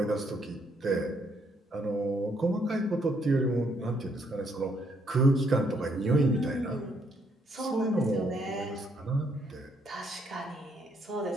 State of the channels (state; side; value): normal; both; correlation 0.71